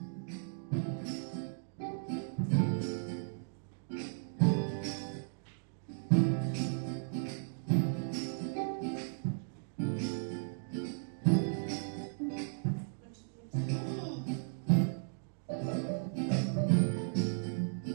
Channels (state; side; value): silent; left; digital silence